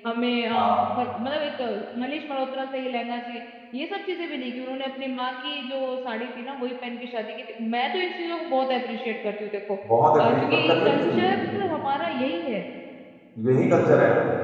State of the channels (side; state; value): both; identical; correlation 1.00